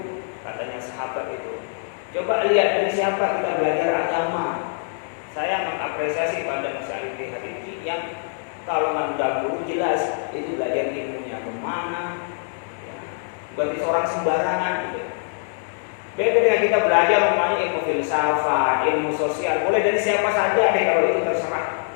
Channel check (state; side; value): silent; right; 62 dB below the other